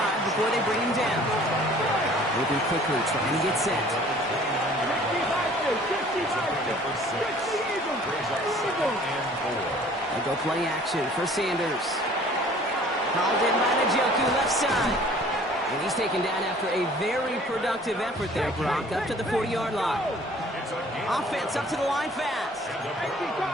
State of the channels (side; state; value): both; normal; correlation 0.52